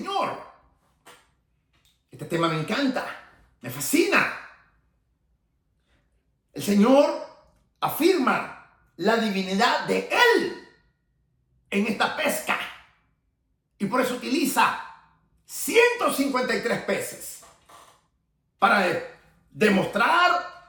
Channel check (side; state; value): both; identical; correlation 1.00